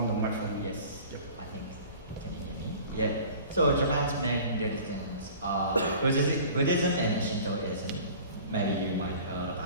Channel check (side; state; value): both; inverted; correlation -0.44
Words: the microphone. Yes, yep. I think, can you hear me? Yeah. So Japan's main religions are Buddhism and Shintoism. Maybe you might heard